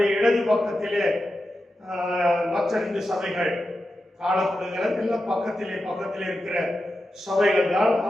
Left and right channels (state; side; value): normal; both; correlation 0.90